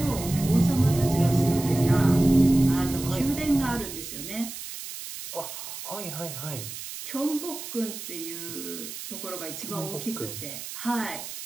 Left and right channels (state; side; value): noise; right; hiss, 10 dB below the sound